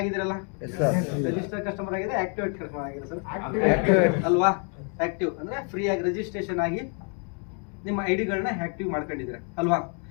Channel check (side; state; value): right; quieter; 39.6 dB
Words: ರಿಜಿಸ್ಟರ್ ಕಸ್ಟಮರ್ ಆಗಿದೆ, ಆಕ್ಟಿವೇಟ್ ಕಸ್ಟಮರ್ ಆಗಿದೆ ಸರ್ ಅಲ್ವಾ? ಆಕ್ಟಿವ್ ಅಂದ್ರೆ ಫ್ರೀ ಆಗಿ ರಿಜಿಸ್ಟ್ರೇಷನ್ ಆಗಿ ನಿಮ್ಮ ಐಡಿಗಳನ್ನ ಆಕ್ಟಿವ್ ಮಾಡ್ಕೊಂಡಿದ್ದೀರಾ ಅಲ್ವಾ?